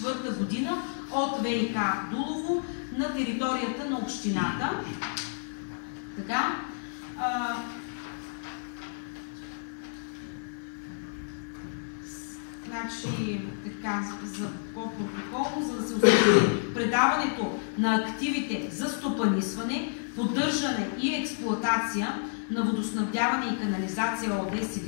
година от ВиК Дулово на територията на общината. Така. Значи, така, за по-протоколно, за да се установи предаването на активите за стопанисване, поддържане и експлоатация на водоснабдяване и канализация ООД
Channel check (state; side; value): silent; right; 58 dB below the other